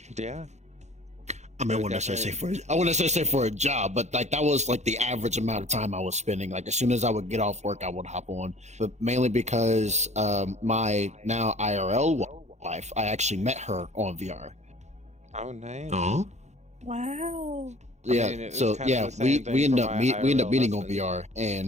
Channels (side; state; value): left; late; 0.33 ms